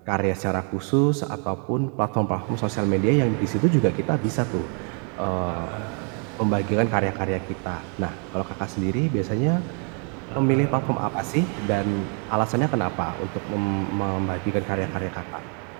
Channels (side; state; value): left; quieter; 38.9 dB